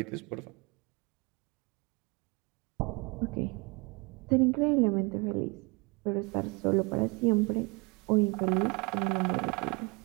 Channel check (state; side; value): quieter; left; 28.6 dB